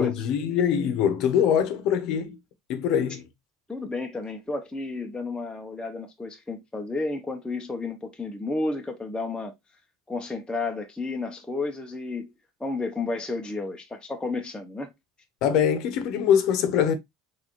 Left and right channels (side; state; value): right; quieter; 6.4 dB